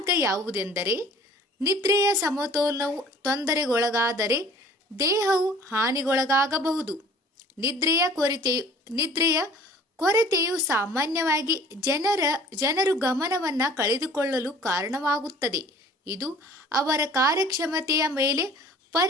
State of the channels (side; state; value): both; normal; correlation 0.50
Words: ಯಾವುದೆಂದರೆ ನಿದ್ರೆಯ ಸಮತೋಲನವು ತೊಂದರೆಗೊಳಗಾದರೆ ದೇಹವು ಹಾನಿಗೊಳಗಾಗಬಹುದು. ನಿದ್ರೆಯ ಕೊರತೆಯು ಸಾಮಾನ್ಯವಾಗಿ ಜನರು ಗಮನವನ್ನ ಕಳೆದುಕೊಳ್ಳಲು ಕಾರಣವಾಗುತ್ತದೆ. ಇದು ಅವರ ಕಾರ್ಯಕ್ಷಮತೆಯ ಮೇಲೆ